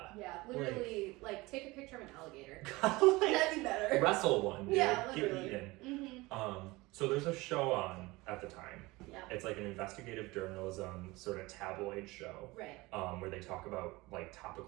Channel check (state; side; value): quieter; left; 21.8 dB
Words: Yeah, literally, like take a picture of an alligator. Like, that'd be better. Wrestle one, dude. Yeah, Get literally. eaten. So there's a show on at the time. Yeah. It's like an investigative journalism sort of tabloid show. Right. Where they talk about like